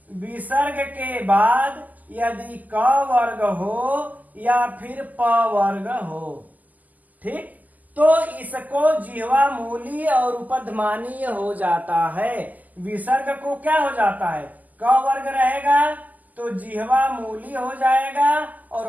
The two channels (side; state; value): left; late; 0.080 ms